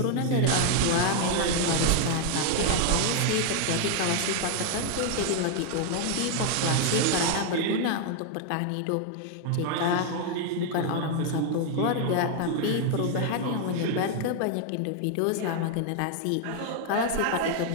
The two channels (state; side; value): different; both; correlation 0.00